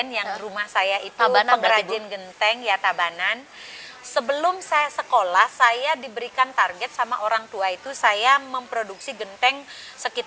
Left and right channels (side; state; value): both; identical; correlation 1.00